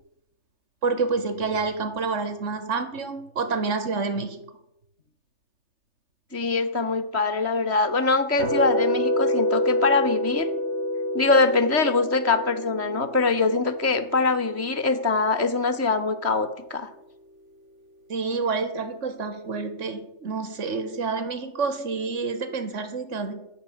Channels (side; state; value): left; late; 3.3 ms